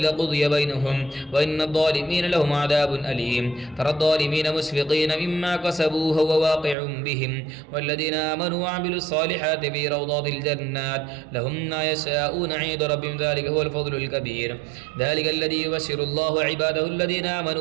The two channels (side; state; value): left; drops out; at 6.8 s